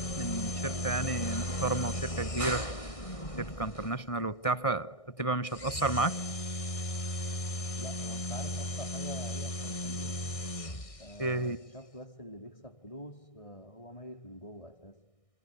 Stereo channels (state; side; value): late; right; 1.6 ms